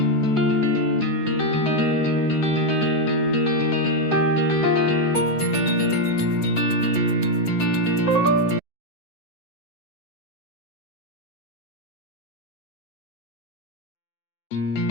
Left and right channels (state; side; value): late; right; 7.9 ms